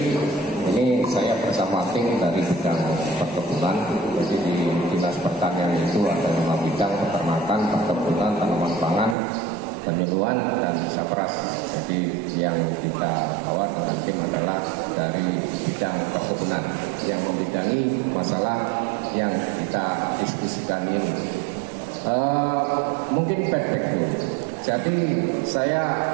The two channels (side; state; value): left; drops out; at 9.2 s